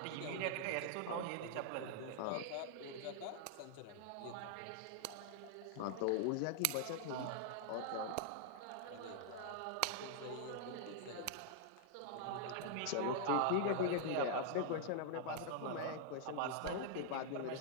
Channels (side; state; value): both; different; correlation -0.01